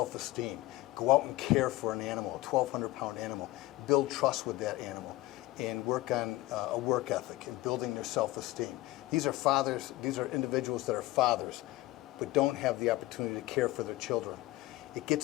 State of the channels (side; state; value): right; quieter; 18.3 dB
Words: go out and care for an animal, a 1,200-pound animal, build trust with that animal, and work on a work ethic and building their self-esteem. These are fathers, these are individuals that are fathers, but don't have the opportunity to care for their children. It